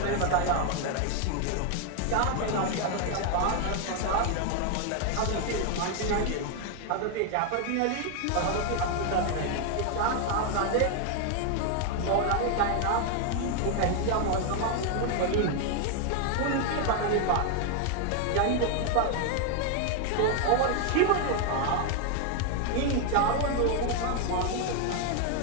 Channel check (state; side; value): different; both; correlation 0.01